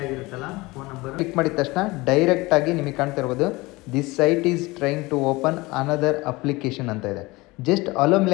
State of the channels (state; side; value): quieter; right; 22.2 dB